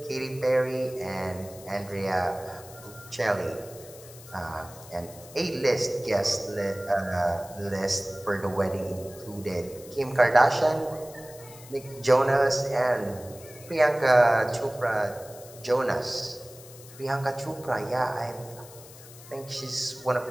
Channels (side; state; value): left; noise; hiss, 19 dB below the sound